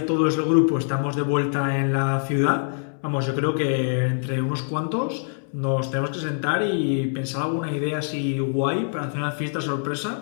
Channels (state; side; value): silent; right; digital silence